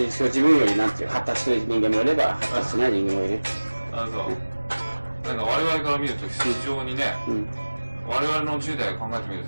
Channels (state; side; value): inverted; both; correlation -1.00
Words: に自分よりなんていう発達してる人間もいれば発達しない人間もいる。そう。なんか我々から見ると非常にね、我々の10代を考えてみる